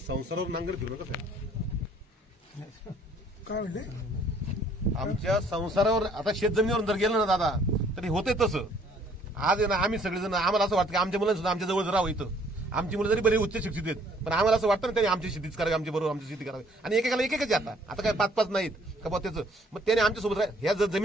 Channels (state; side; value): normal; both; correlation 0.61